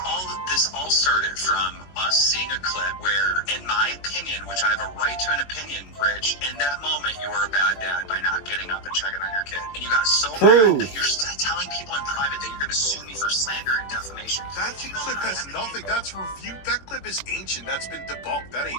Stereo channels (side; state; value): right; late; 21 ms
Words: all started from us seeing a clip where, in my opinion, which I have a right to an opinion, Rich, in that moment you were a bad dad by not getting up and checking on your kid. And you got so mad that you're telling people in private that you're going to sue me for slander and defamation. That clip has nothing. That's reviewed. That clip is ancient. That's been debunked. That